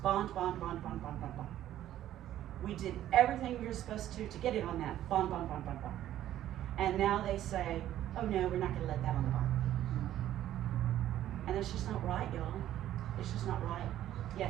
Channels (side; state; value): left; quieter; 12.5 dB